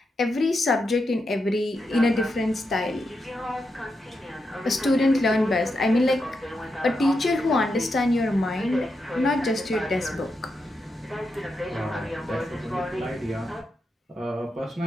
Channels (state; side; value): normal; both; correlation 0.85